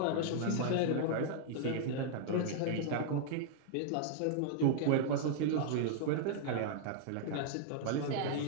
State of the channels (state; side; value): different; both; correlation -0.01